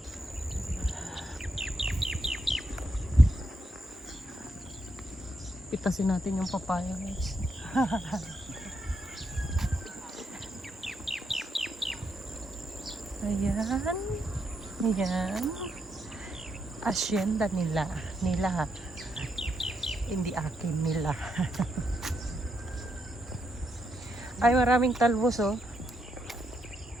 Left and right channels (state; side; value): normal; both; correlation 0.80